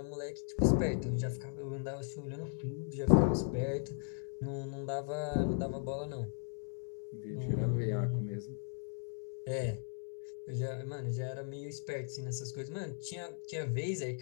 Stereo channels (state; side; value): silent; right; 53 dB below the other